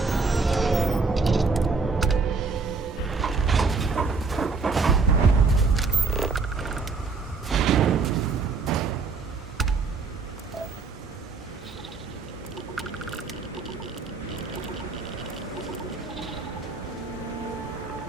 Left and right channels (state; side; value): quieter; left; 4.5 dB